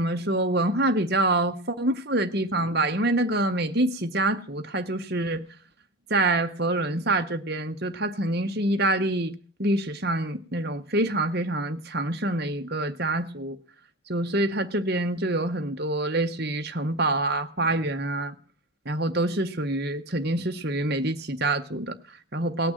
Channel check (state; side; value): normal; both; correlation 0.29